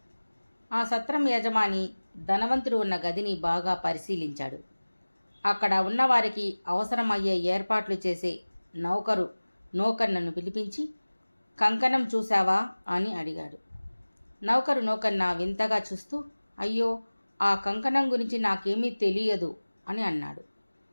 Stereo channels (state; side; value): inverted; both; correlation -1.00